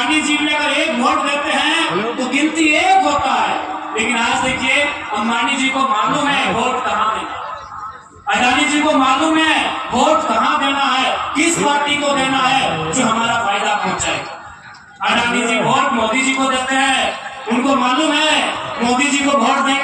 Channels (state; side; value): identical; both; correlation 1.00